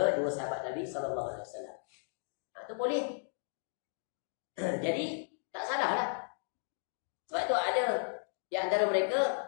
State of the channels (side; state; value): right; silent; digital silence